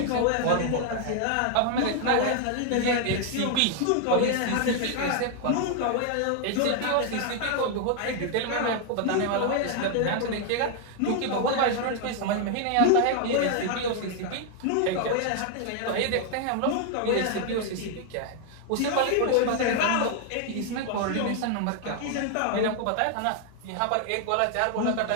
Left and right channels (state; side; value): different; both; correlation 0.00